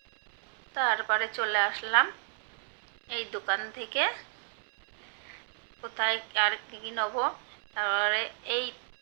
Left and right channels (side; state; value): left; silent; digital silence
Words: তারপরে চলে আসলাম এই দোকান থেকে, কোথায় আর কী নেবো। তারপরে এই